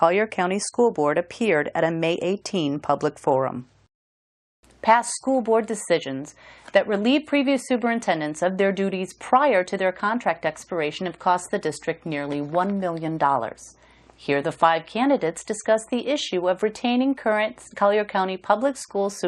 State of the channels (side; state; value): both; identical; correlation 1.00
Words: County School Board appeared at a May 18 public forum. Past school board decisions that relieve previous superintendents of their duties prior to their contract expiration have cost the district nearly $1 million. Here, the 5 candidates discuss the issue of retaining current Collier County Public Schools